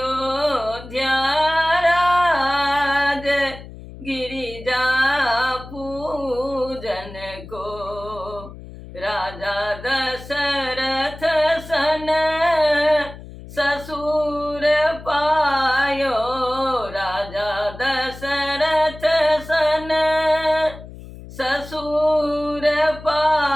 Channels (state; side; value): noise; left; hum, 15 dB below the sound